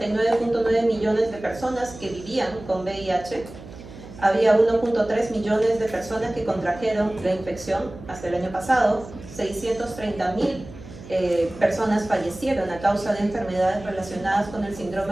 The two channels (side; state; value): right; noise; hum, 16 dB below the sound